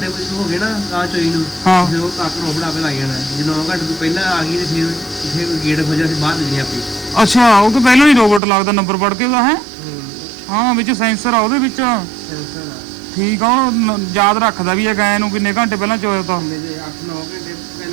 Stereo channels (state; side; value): drops out; left; at 8.4 s